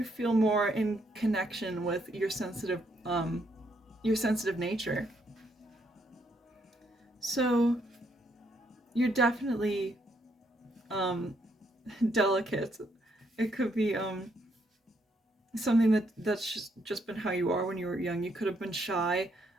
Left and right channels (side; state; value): both; normal; correlation 0.74